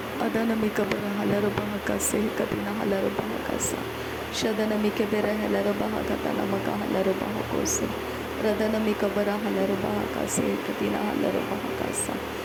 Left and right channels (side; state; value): both; identical; correlation 1.00